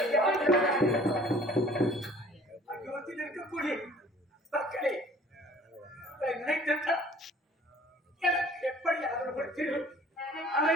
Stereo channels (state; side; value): normal; both; correlation 0.52